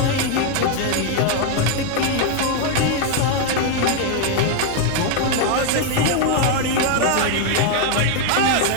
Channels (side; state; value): both; different; correlation 0.00